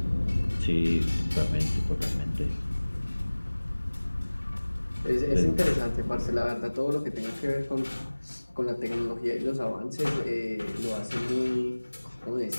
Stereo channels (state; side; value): inverted; both; correlation -1.00